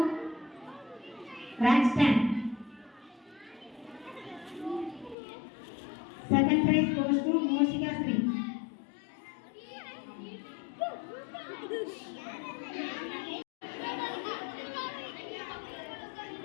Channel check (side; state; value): right; drops out; at 5.2 s